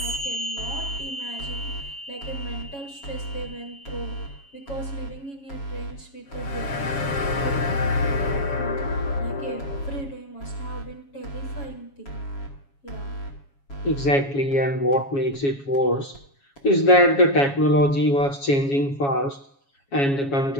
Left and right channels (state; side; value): late; right; 7.2 ms